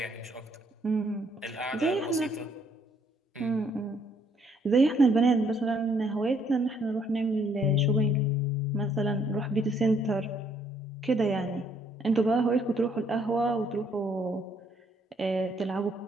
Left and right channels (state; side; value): normal; both; correlation 0.67